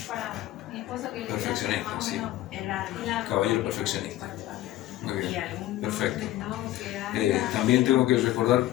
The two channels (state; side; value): quieter; right; 14.9 dB